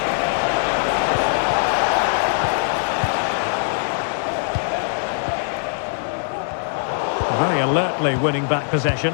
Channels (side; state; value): right; silent; 65 dB below the other